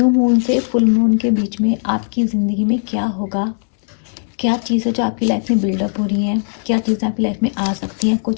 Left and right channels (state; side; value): silent; right; 68 dB below the other